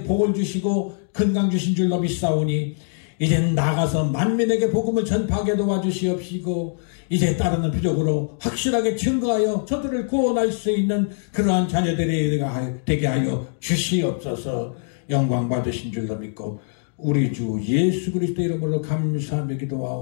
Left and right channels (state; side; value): silent; right; digital silence